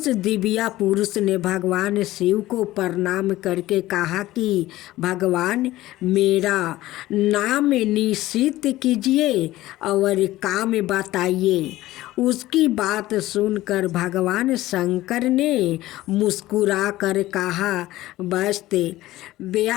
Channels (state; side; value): quieter; right; 16.5 dB